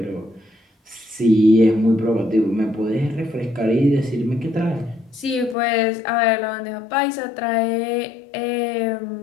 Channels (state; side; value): drops out; right; at 5.6 s